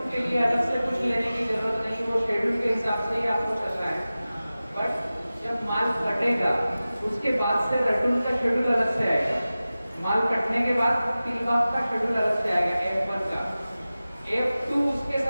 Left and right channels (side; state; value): both; inverted; correlation -0.96